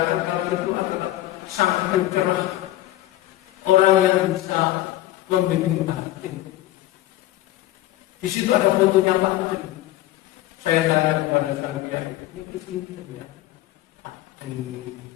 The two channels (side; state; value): right; quieter; 15.3 dB